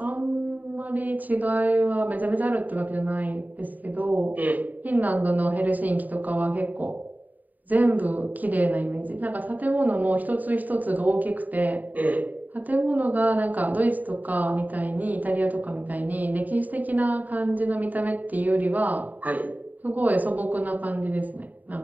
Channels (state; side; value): late; left; 0.083 ms